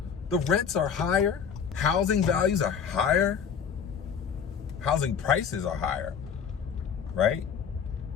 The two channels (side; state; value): right; quieter; 7.1 dB